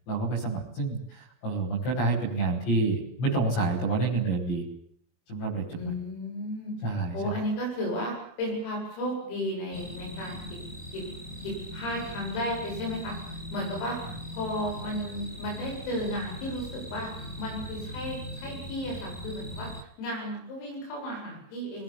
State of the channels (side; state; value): right; late; 23 ms